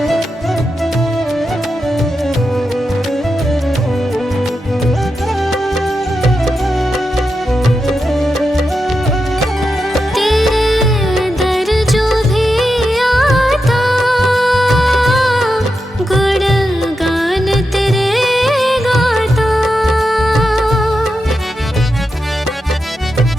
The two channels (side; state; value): both; normal; correlation 0.88